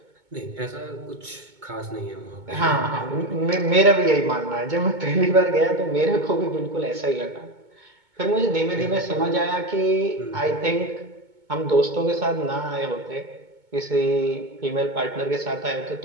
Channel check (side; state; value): left; late; 2.2 ms